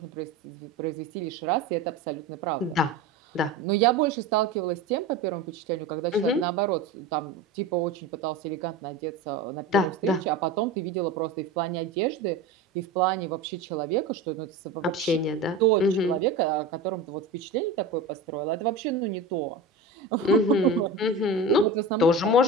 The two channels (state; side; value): quieter; left; 3.2 dB